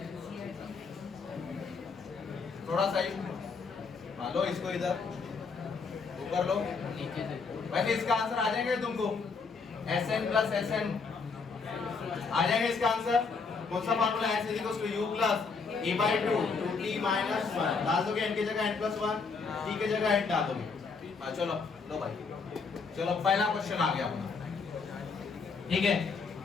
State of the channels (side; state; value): right; quieter; 4.9 dB